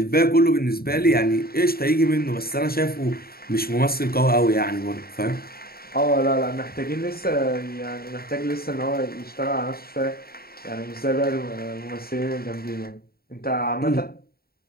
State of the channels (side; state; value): right; late; 0.44 ms